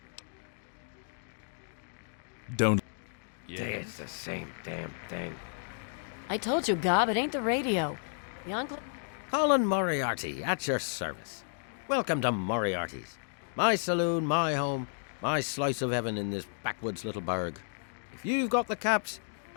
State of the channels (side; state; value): right; silent; digital silence